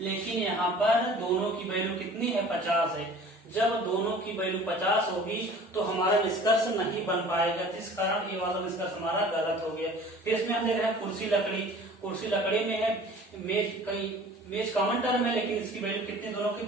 यहाँ पर दोनों की वैल्यू कितनी है, 50 है। जब दोनों की वैल्यू 50 होगी तो हमारा निष्कर्ष नहीं बन पाएगा, जिस कारण ये वाला निष्कर्ष हमारा गलत हो गया। फिर इसमें हम देख रहे हैं कुर्सी लकड़ी, कुर्सी लकड़ी में है, मेज कॉमन टर्म है लेकिन इसकी वैल्यू कितनी, दोनों की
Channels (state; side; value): normal; both; correlation 0.46